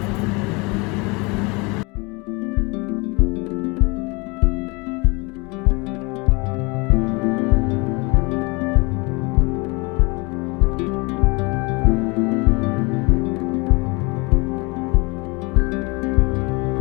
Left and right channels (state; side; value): quieter; right; 27.8 dB